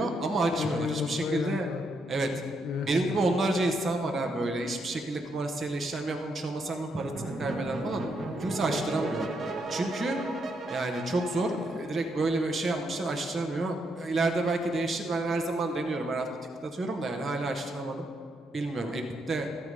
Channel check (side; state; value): both; normal; correlation 0.78